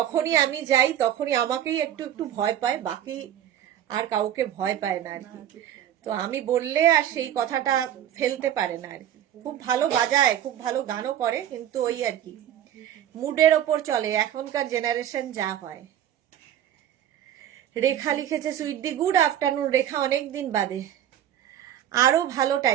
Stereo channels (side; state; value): left; quieter; 11.1 dB